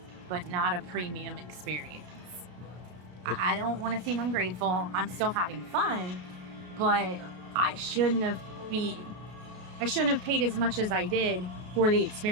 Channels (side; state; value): left; late; 33 ms